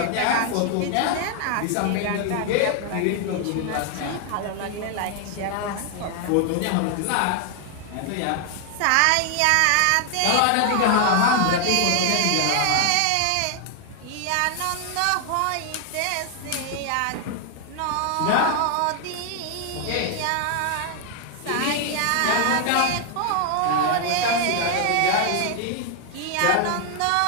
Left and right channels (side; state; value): both; different; correlation 0.00